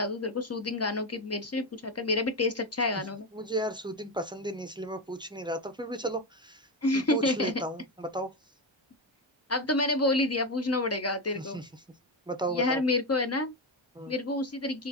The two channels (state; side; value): normal; both; correlation 0.13